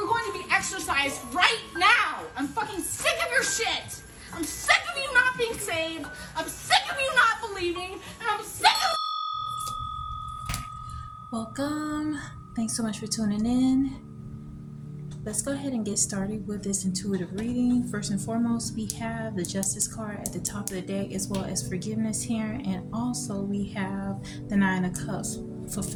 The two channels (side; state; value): both; identical; correlation 1.00